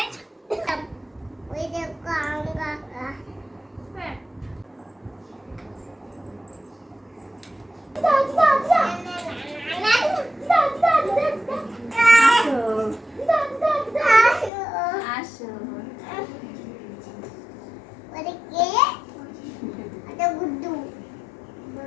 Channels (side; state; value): right; drops out; at 14.5 s